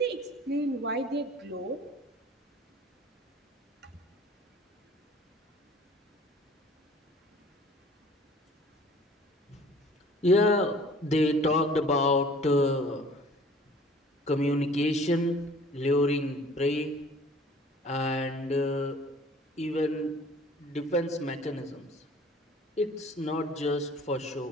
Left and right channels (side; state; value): both; normal; correlation 0.50